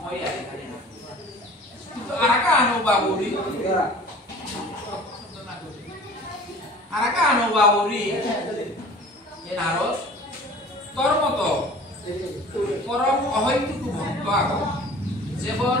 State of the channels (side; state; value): both; normal; correlation 0.45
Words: আর কিন্তু আরাকা অনুবাবুরি এনারস তোর মতো পরম অহৈতুক ভক্ত আগো যেবর